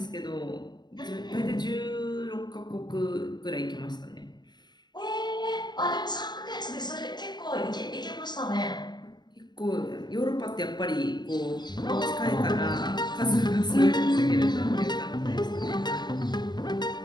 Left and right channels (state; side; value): late; right; 0.21 ms